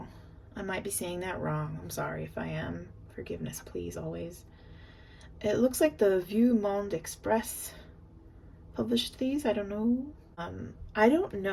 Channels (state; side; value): identical; both; correlation 1.00